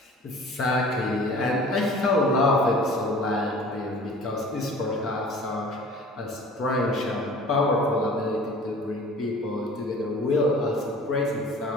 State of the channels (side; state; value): both; normal; correlation 0.45